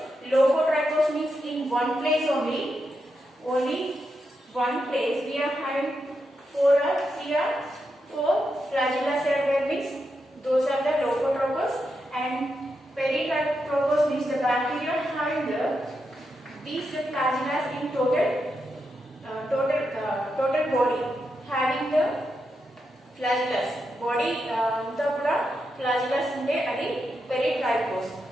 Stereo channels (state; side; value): normal; both; correlation 0.85